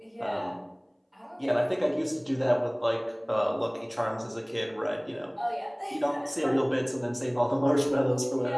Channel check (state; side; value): identical; both; correlation 1.00